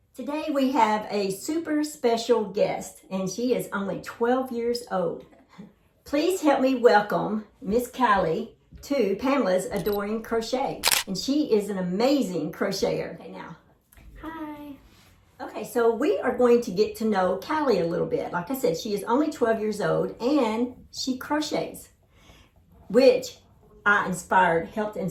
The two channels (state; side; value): identical; both; correlation 1.00